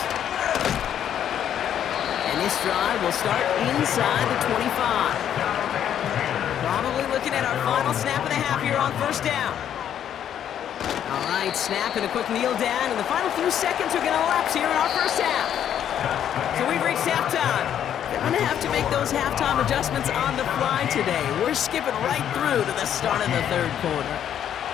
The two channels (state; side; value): quieter; right; 9.8 dB